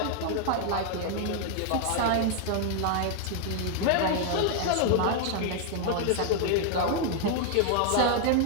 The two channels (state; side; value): different; both; correlation 0.00